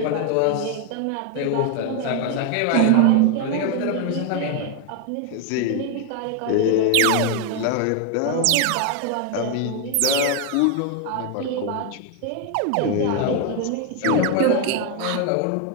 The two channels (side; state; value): both; different; correlation 0.01